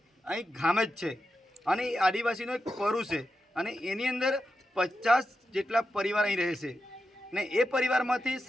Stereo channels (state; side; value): normal; both; correlation 0.89